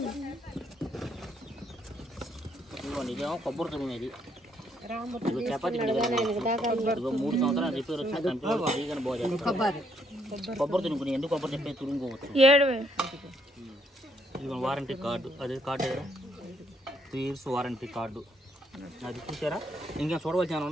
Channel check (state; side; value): normal; both; correlation 0.72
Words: ఇదేమో కొబ్బరి తురుమేది చపాతీ 3 సంవత్సరాలు రిపేర్ వచ్చి కొబ్బరి తురుముకుని ఎందుకు కొబ్బరి చెప్పే తురుముకోవచ్చు 7,000 వారంటీ కార్డు అదే కార్డు దగ్గర 3 years వారంటీ కార్డు అది చూసారా ఇంకా చూడవలసిన